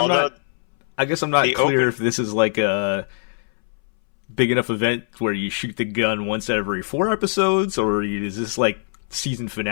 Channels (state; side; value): silent; right; 63 dB below the other